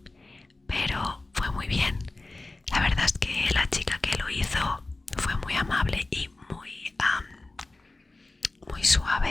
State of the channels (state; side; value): quieter; right; 3.1 dB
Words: pero fue muy bien. La verdad es que la chica que lo hizo fue muy amable y muy